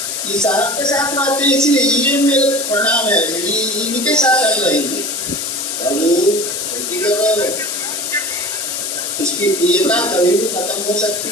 ये साहब के साथ रहते हैं, इसलिए ये मेरे प्रणाम है, ये इनके साथ हम रहेंगे। इसकी प्रियता कभी भी खत्म हो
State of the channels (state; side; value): noise; left; hiss, 3 dB below the sound